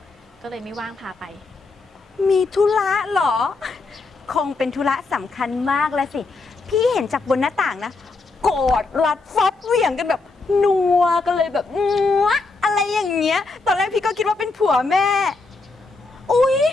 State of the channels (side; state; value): right; quieter; 3.7 dB